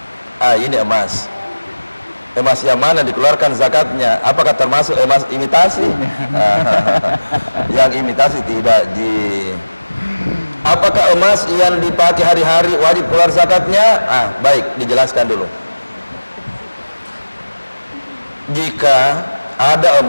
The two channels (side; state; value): both; inverted; correlation -1.00